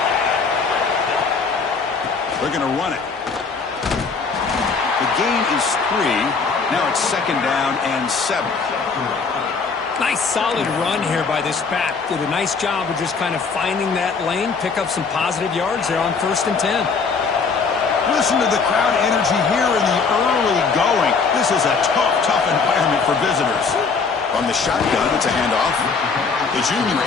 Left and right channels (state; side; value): quieter; right; 5.0 dB